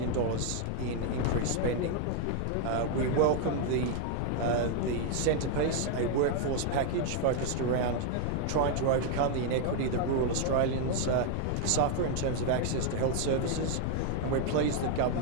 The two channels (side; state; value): both; different; correlation 0.00